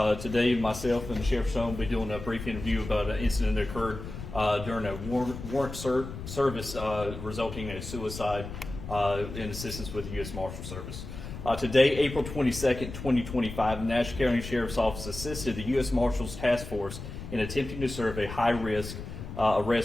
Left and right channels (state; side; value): noise; left; rumble, 10 dB below the sound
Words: Today, myself and the Sheriff's Son will be doing a brief interview about an incident that occurred during a warrant service resulting in a suicide in assistance with the U.S. Marshals Service. Today, April 22nd, 2025, the Nash County Sheriff's Office assisted the U.S. Marshals Task Force in attempting to serve a high-risk